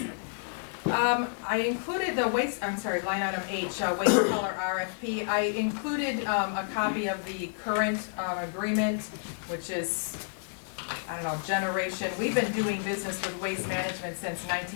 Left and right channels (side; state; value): right; silent; digital silence